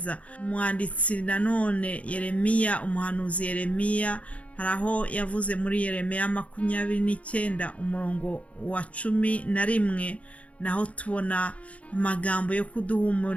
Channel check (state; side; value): late; right; 0.065 ms